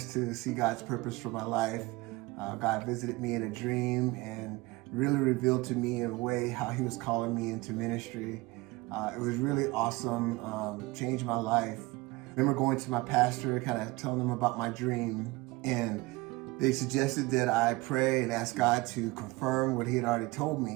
to see God's purpose for my life, God visited me in a dream and really revealed to me in a way how He was calling me into ministry. It was really awesome, changed my life. I remember going to my pastor, kind of telling him about my dream, and they suggested that I pray and ask God to confirm what He had already told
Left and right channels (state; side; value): quieter; left; 22.4 dB